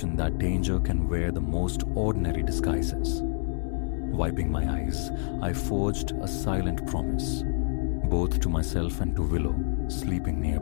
that danger can wear the most ordinary disguises. Wiping my eyes, I forged a silent promise, both to myself and to Willow, sleeping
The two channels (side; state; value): right; silent; digital silence